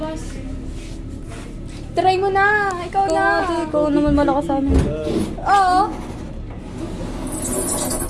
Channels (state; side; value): identical; both; correlation 1.00